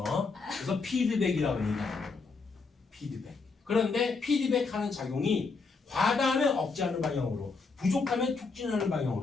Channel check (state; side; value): quieter; right; 4.4 dB